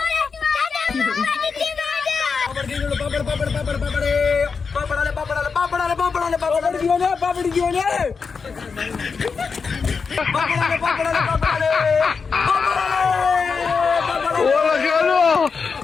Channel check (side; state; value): right; quieter; 5.3 dB